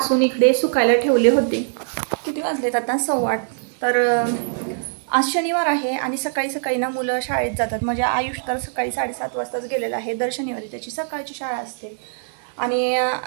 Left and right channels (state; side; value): silent; left; 64 dB below the other